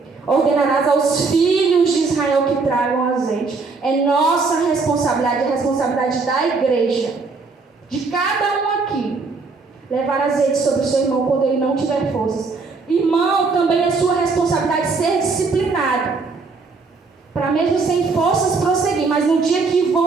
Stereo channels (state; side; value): quieter; left; 4.3 dB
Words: Ordenarás aos filhos de Israel que tragam azeite. É nossa responsabilidade, a responsabilidade da igreja, de cada um aqui, levar azeite sobre o seu irmão quando ele não tiver forças. Irmão, também é sua responsabilidade ser disciplinado, para mesmo sem forças prosseguir. Mas no dia que